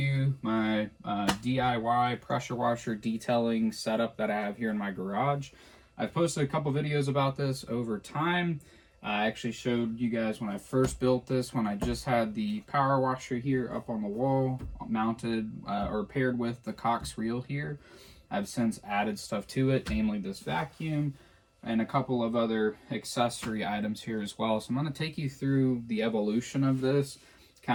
my DIY pressure washer detailing setup that I have here in my garage. I've posted a couple videos about this over time. I actually showed you guys when I first built this, when I just had the power washer here up on the wall, mounted or paired with the Cox reel here. I've since added stuff to it, namely this vacuum and a couple of other accessory items here as well. So I'm going to take you through the evolution of this,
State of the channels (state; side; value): identical; both; correlation 1.00